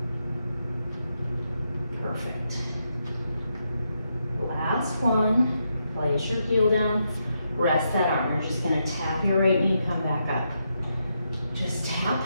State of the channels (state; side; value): inverted; both; correlation -0.82